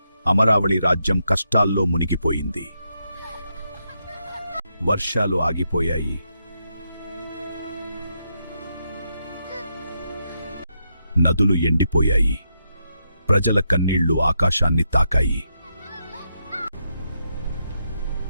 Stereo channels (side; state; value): both; inverted; correlation -0.81